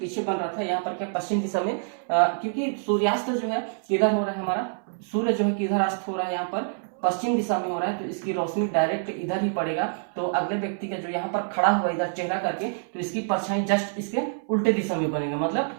बन रहा था। यहाँ पर क्या पश्चिम दिशा में, क्योंकि सूर्यास्त जो है किधर हो रहा है हमारा, सूर्य जो है किधर अस्त हो रहा है, यहाँ पर पश्चिम दिशा में हो रहा है, तो इसकी रोशनी डायरेक्ट इधर ही पड़ेगा। तो अगले व्यक्ति का जो यहाँ पर खड़ा हुआ इधर चेहरा करके, तो इसकी परछाई जस्ट इसके उल्टे दिशा में बनेगा, मतलब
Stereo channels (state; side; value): silent; left; 61 dB below the other